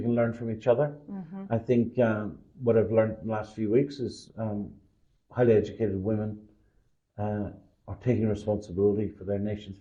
can learn from each other. I think what I've learned in the last few weeks is highly educated women are taking responsibility for their nation's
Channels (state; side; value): identical; both; correlation 1.00